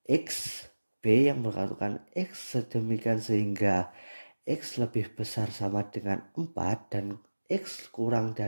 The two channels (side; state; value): both; inverted; correlation -1.00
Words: yang beranggotakan X sedemikian sehingga X lebih besar sama dengan 4 dan X kurang